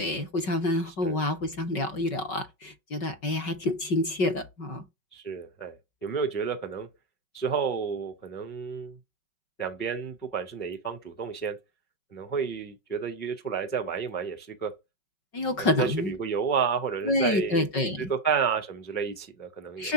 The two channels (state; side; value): late; right; 5.3 ms